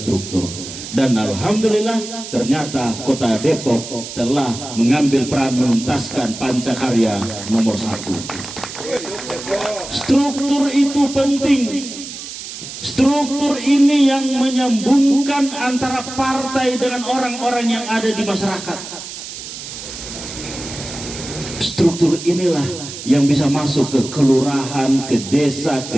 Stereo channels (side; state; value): right; noise; hiss, 10 dB below the sound